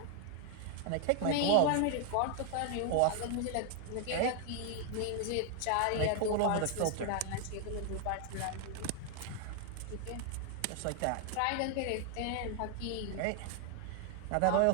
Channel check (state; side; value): different; both; correlation 0.00